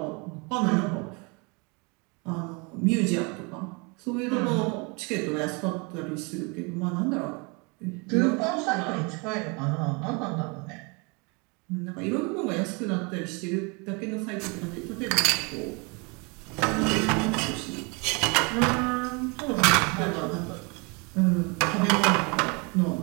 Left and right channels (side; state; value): left; quieter; 30.6 dB